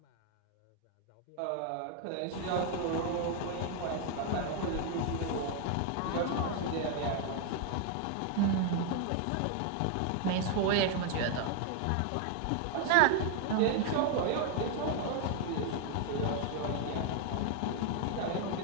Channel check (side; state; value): both; different; correlation 0.00